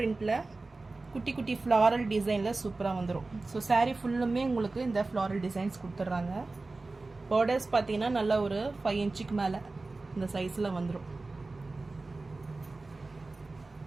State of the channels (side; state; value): left; quieter; 3.4 dB